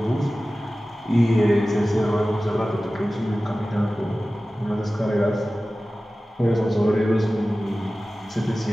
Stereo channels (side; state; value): both; normal; correlation 0.96